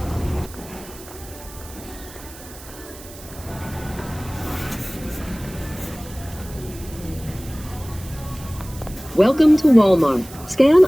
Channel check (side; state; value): right; noise; hiss, 17 dB below the sound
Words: Welcome to Walmart. Scan